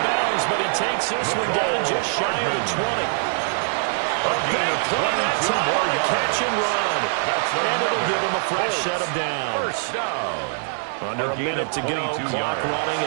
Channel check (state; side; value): silent; left; 58 dB below the other